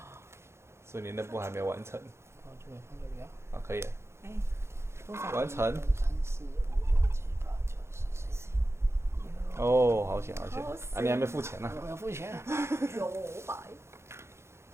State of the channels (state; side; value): late; left; 0.13 ms